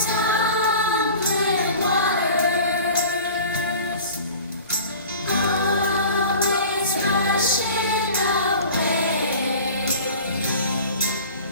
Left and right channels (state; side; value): inverted; both; correlation -0.41